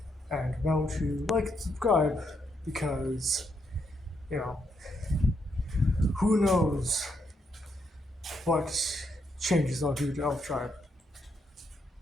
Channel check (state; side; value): normal; both; correlation 0.78